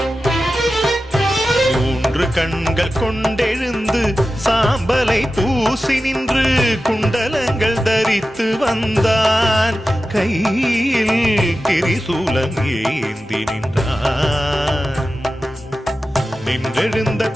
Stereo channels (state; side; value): normal; both; correlation 0.93